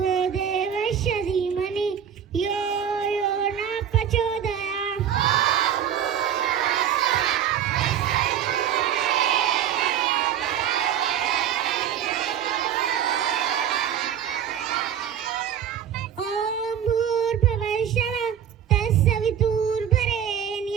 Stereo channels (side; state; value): left; quieter; 9.2 dB